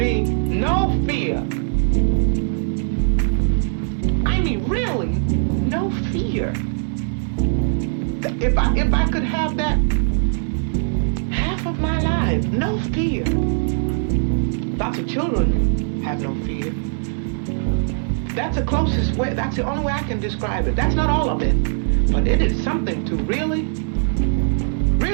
No fear. I mean, really, no fear. If I could have that half of my life, no fear. Lots of children have no fear. That's the closest way, that's the only way I can describe it. That's not all of it, but it is something to really,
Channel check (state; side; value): silent; left; digital silence